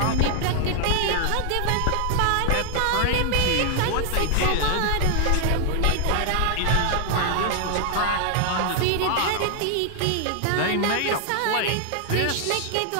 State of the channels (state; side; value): different; both; correlation 0.00